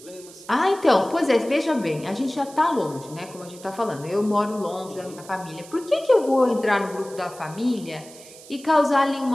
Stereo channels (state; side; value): noise; right; hiss, 19 dB below the sound